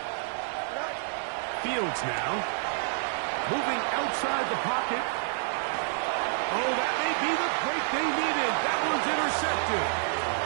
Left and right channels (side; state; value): left; silent; digital silence